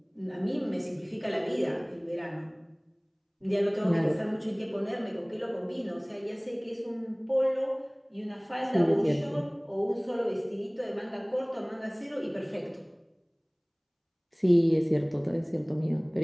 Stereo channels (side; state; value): both; identical; correlation 1.00